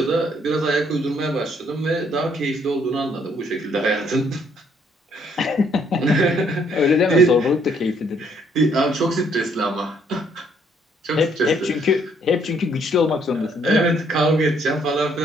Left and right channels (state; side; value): normal; both; correlation 0.67